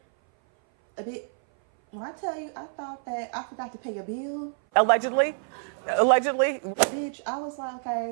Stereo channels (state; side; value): silent; left; 57 dB below the other